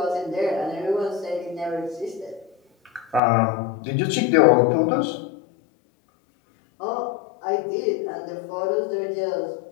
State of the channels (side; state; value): right; drops out; at 3.2 s